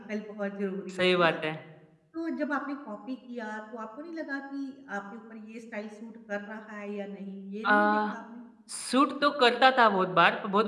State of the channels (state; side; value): identical; both; correlation 1.00